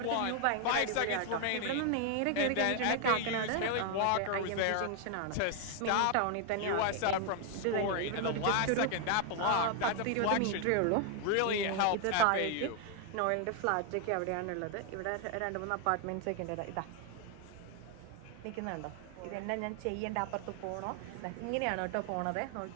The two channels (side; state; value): both; different; correlation 0.00